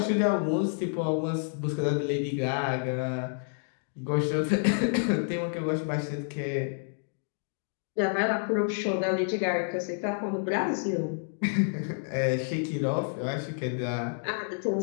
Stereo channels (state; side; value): silent; right; digital silence